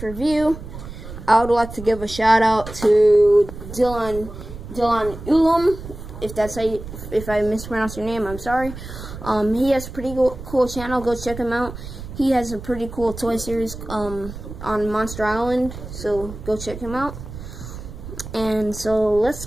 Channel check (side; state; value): right; noise; rumble, 12 dB below the sound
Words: review, I would like to give a shout out to Dylan Ulam, if I mispronounced your name, I'm sorry. He has a pretty cool channel. Go check him out. He has a pretty cool toy series on Monster Island, so go check him out. And so let's